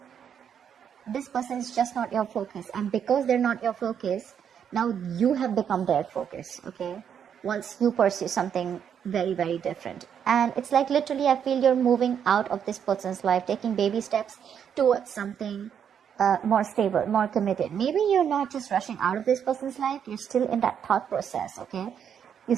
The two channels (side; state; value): left; quieter; 8.2 dB